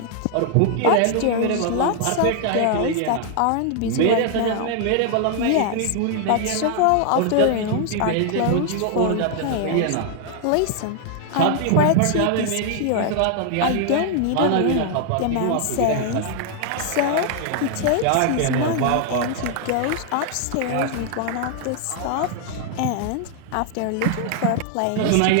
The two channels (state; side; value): different; both; correlation 0.00